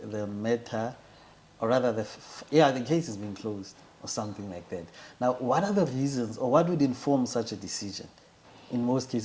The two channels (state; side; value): identical; both; correlation 1.00